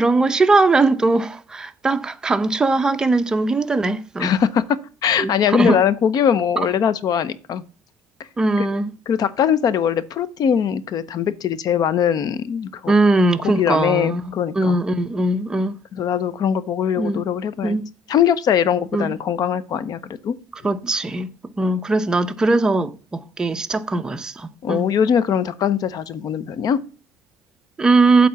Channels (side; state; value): both; normal; correlation 0.67